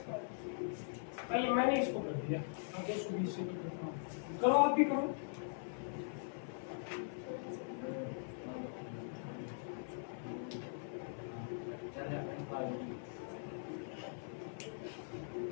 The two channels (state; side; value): silent; right; 50 dB below the other